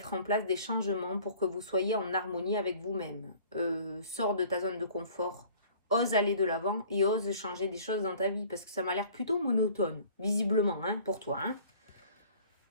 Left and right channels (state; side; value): inverted; both; correlation -0.51